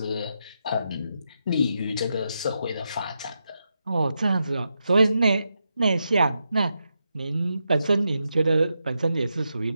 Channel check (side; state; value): both; inverted; correlation -0.85